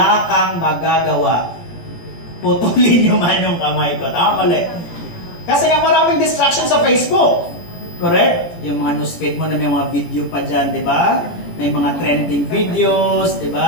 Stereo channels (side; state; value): right; late; 17 ms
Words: kang magagawa. Putulin nyo man yung kamay ko. Tama ulit. Kasi nga maraming distractions sa Facebook. Correct? Yung mga newsfeed mo na may mga video pa dyan, di ba? May mga trending videos, di